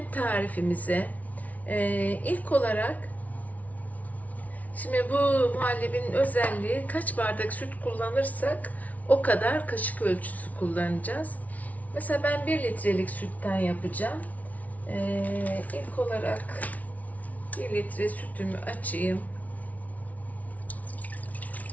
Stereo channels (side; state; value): right; late; 0.071 ms